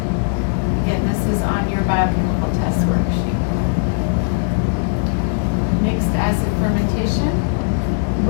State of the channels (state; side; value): silent; right; digital silence